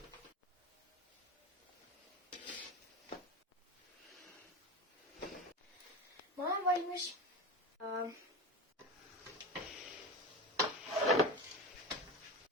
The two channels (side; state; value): both; normal; correlation 0.26